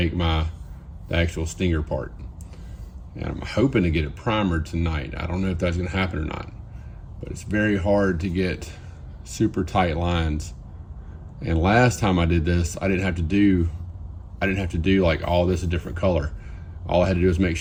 the actual stinger part. And I'm hoping to get it primered tonight. I don't know if that's gonna happen or not, but it's very hard to get super tight lines. And last time I did this, I didn't have to do like all this a different color. All I had to do was make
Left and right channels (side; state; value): both; identical; correlation 1.00